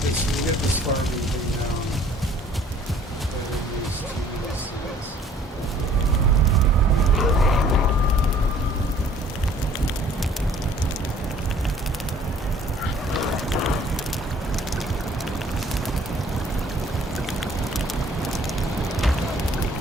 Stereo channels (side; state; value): both; normal; correlation 0.56